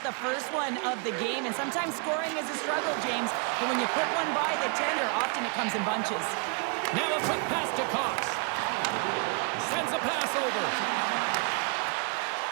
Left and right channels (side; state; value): left; quieter; 37.5 dB